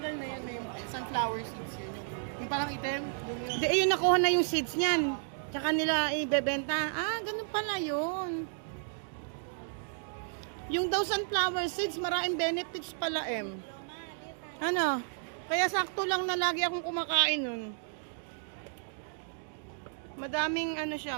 na yan, may sunflower seeds yun. Yung parang item, yun yun. Di, ayun, nakuha na yung seeds niyan. Tsaka nila ibebenta. Ah, ganun pala yun. Yung daw sunflower seeds, maraming benefits pala, Ano? Kaya sakto lang na lagi akong kumakain nun. Madaming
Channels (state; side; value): silent; left; digital silence